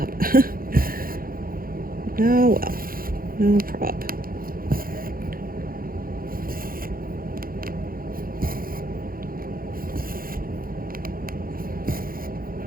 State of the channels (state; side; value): late; left; 0.42 ms